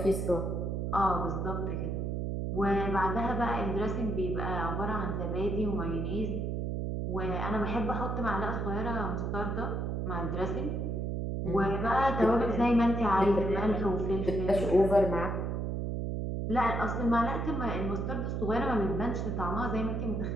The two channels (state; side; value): noise; right; hum, 1 dB below the sound